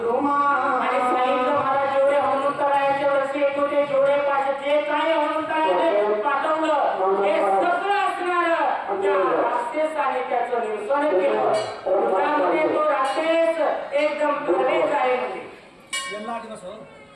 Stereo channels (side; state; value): both; identical; correlation 1.00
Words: आणि सांगितलं मला जेवढे हनुमंतरायाचे वर्षे येत होते जेवढे पाहिजे जे काय हनुमंतरायाने पाठवलं हे सगळं असणार त्या राक्षसाने त्याचं निरसन केलं त्यामध्ये तो राक्षस एकदम भरलेच आहे म्हणजे यांना आधी नसं